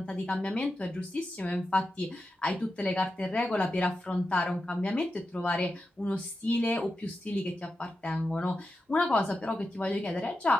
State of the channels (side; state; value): both; normal; correlation 0.90